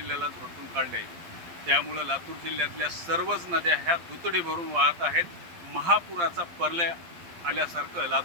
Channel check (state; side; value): late; left; 12 ms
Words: झोडपून काढले। त्यामुळे लातूर जिल्ह्यातल्या सर्वच नद्या ह्या दुतडी भरून वाहत आहेत। महापुराचा प्रलय आल्यासारखं